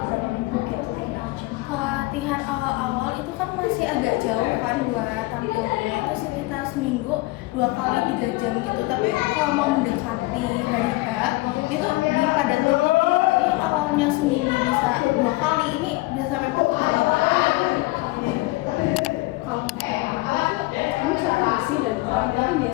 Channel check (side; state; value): right; quieter; 21.4 dB